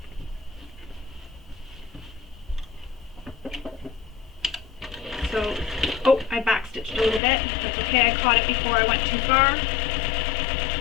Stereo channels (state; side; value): drops out; right; at 7.2 s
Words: So, oh, I back stitched a little bit. That's okay, I caught it before I went too far.